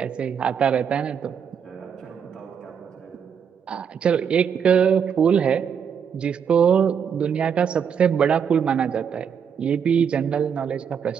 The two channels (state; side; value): quieter; left; 7.3 dB